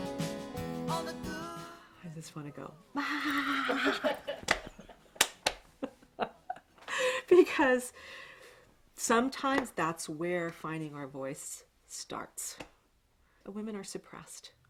I just want to go. Because sometimes that's where finding our voice starts. Women are suppressed.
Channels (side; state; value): both; identical; correlation 1.00